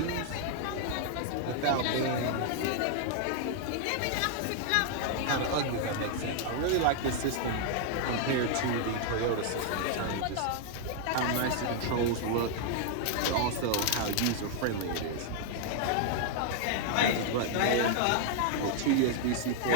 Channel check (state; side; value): different; both; correlation 0.00